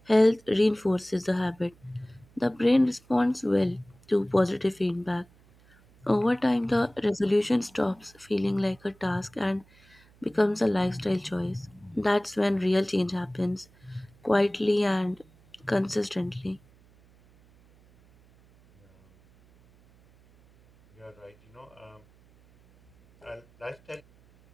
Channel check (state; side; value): noise; right; hum, 29 dB below the sound